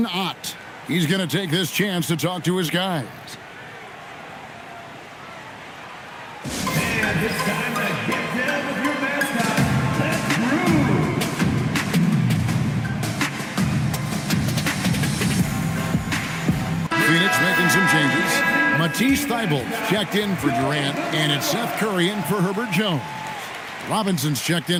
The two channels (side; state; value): both; identical; correlation 1.00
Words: Ott. He's going to take this chance to talk to his guys. And it's time to get down with your mascot. Let's groove. Phoenix making some changes. Matisse Thybulle checked in for Durant, and it's Seth Curry in for Herbert Jones. Robinson's checked